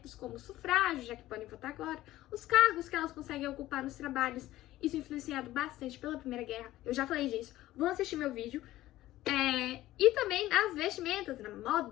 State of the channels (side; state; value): right; quieter; 15.5 dB